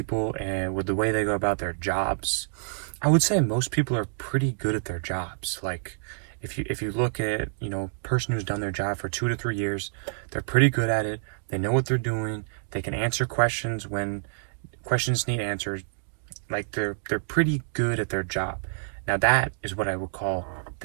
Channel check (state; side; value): silent; left; digital silence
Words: and with the way they go about their jobs, I would say most people are pretty good at their jobs. Like, if you look at, person who's done their job for 2 to 3 years, they're pretty good at it. They know what they're doing. They can answer questions when questions need answers. Like, they're pretty good at their job. Now, that is what I would call